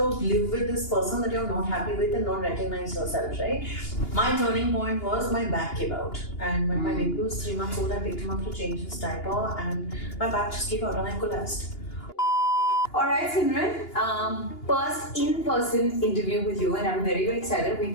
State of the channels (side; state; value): right; late; 2.8 ms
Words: live with this person that you're not happy with and not recognize yourself, right? My turning point was my back gave out. And when my baby was 3 months old, I picked him up to change his diaper and my back just gave out and I collapsed. Alright, Simran, first in-person interview with you, and I'm very, very excited. We